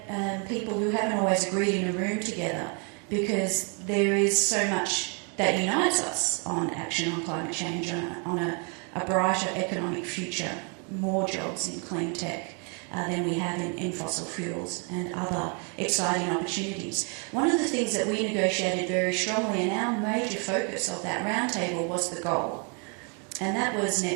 people who haven't always agreed in a room together, because there is so much that unites us on action on climate change, on a brighter economic future, more jobs in clean tech than we have in fossil fuels and other exciting opportunities. One of the things that we negotiated very strongly, and our major focus of that roundtable, was the goal. And that was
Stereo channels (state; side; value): quieter; left; 37.0 dB